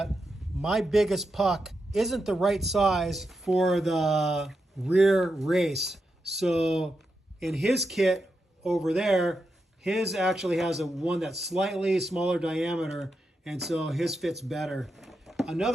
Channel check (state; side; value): normal; both; correlation 0.86